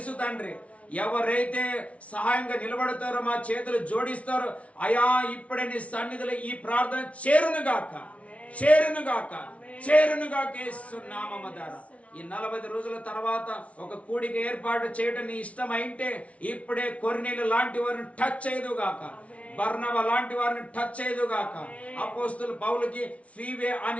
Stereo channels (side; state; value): right; late; 0.064 ms